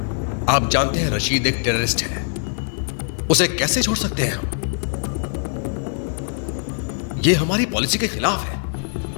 आप जानते हैं रशीद एक टेररिस्ट है, उसे कैसे छोड़ सकते हैं हम? ये हमारी पॉलिसी के खिलाफ है।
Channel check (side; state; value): right; silent; digital silence